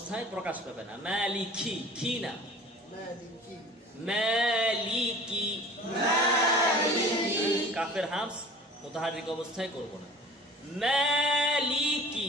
প্রকাশ পাবে না, মালিকি, কি না, মালিকি, মালিকি। মালিকি, কাফের হামস মুতাহাররিক অবস্থায় করব না।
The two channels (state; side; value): normal; both; correlation 0.44